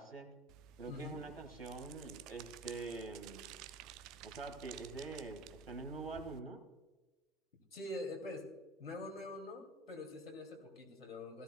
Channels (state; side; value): normal; both; correlation 0.39